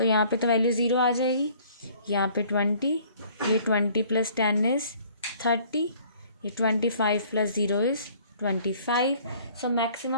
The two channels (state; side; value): inverted; both; correlation -0.55